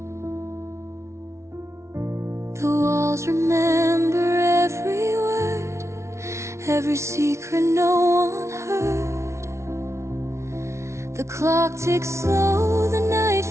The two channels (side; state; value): left; late; 0.13 ms